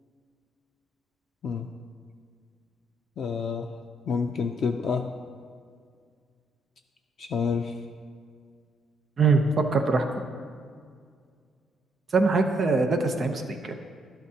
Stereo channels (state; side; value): normal; both; correlation 0.72